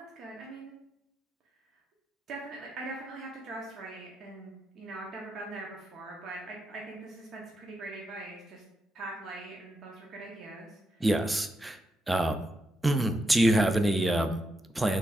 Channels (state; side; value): normal; both; correlation 0.84